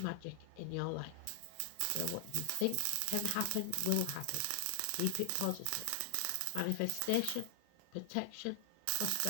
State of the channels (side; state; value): both; different; correlation 0.00